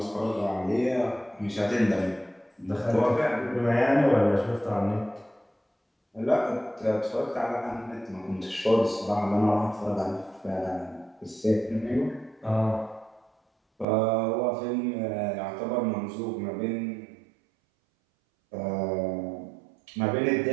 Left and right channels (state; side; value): drops out; left; at 13.9 s